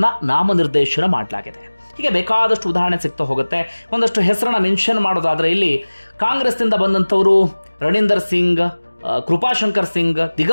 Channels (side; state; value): both; inverted; correlation -1.00